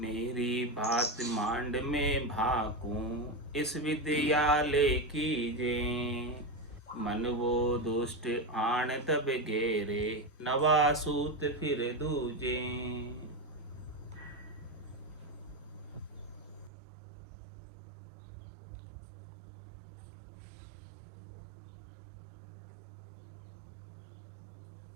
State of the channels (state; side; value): drops out; left; at 16.7 s